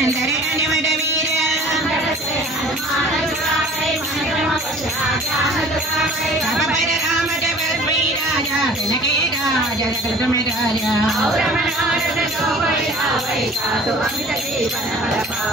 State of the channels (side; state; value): both; normal; correlation 0.47